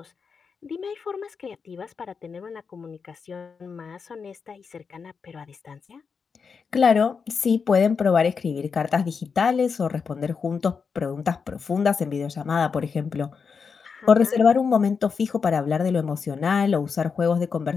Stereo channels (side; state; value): right; quieter; 5.7 dB